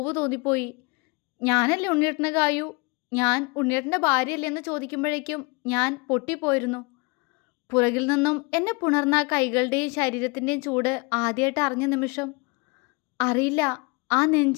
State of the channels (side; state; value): right; quieter; 28.9 dB